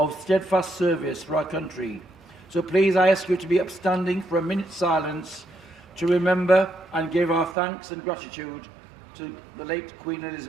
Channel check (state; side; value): drops out; left; at 7.6 s